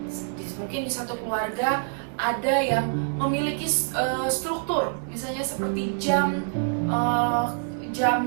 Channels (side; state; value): left; silent; digital silence